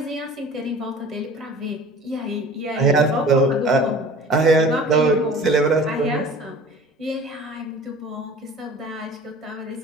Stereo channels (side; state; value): both; normal; correlation 0.43